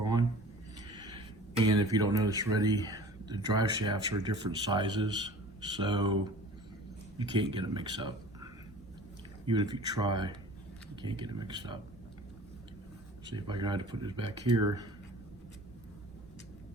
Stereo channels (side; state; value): both; normal; correlation 0.44